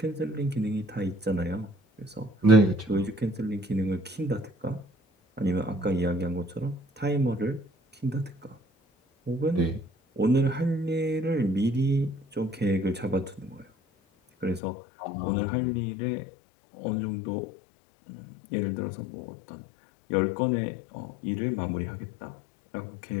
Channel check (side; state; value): right; drops out; at 14.6 s